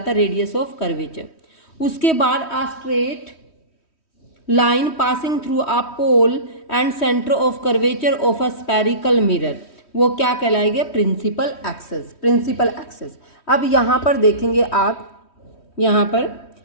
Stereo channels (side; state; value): right; late; 3.1 ms